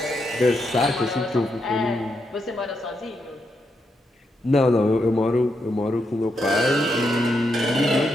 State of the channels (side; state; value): both; normal; correlation 0.82